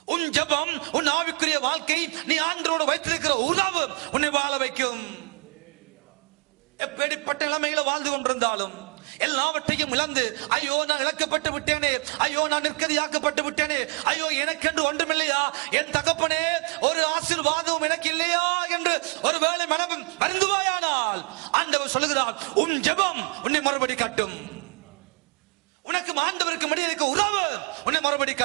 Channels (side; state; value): left; quieter; 34.0 dB